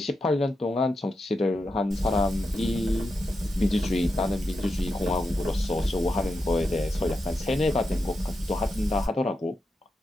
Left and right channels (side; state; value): both; normal; correlation 0.87